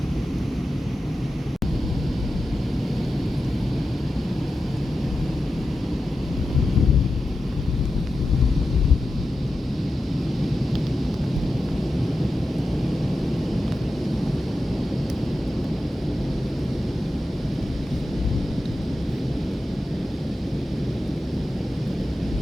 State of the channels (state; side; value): normal; both; correlation 0.91